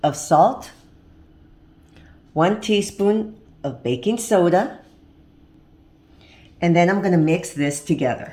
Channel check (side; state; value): both; identical; correlation 1.00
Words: of salt, 1 teaspoon of baking soda, and then I'm going to mix this